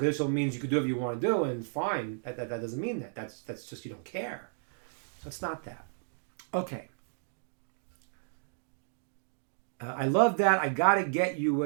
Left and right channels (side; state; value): left; silent; digital silence